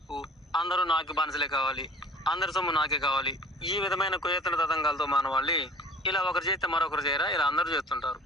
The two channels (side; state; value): both; normal; correlation 0.47